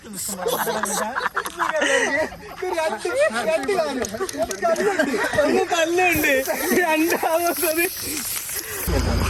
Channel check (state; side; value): identical; both; correlation 1.00